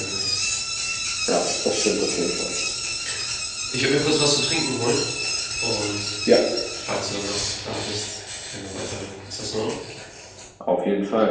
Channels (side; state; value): both; identical; correlation 1.00